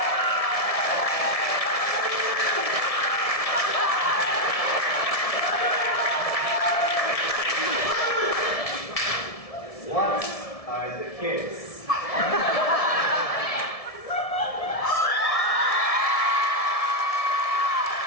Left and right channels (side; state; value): right; late; 1.7 ms